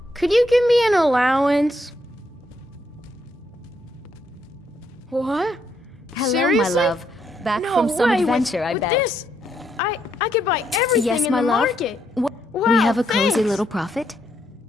Could you give me an allowance? What? Hello, Seriously? my love. Back No from some way. adventure, I with bet. This, I could buy everything Yes, in my the love. market. We Wow, have a cozy thanks. little profit.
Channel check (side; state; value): both; normal; correlation 0.75